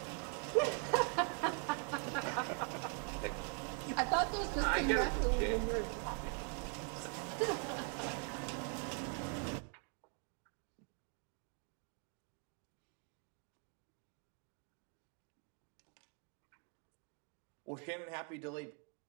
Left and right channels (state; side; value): quieter; left; 39.2 dB